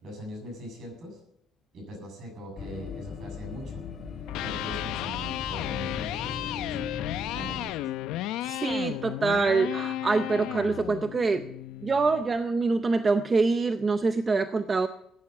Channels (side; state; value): both; normal; correlation 0.79